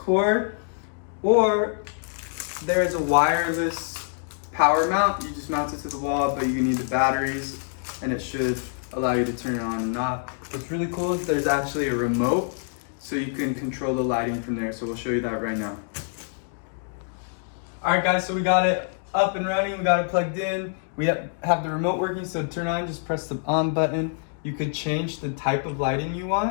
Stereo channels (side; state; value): right; silent; digital silence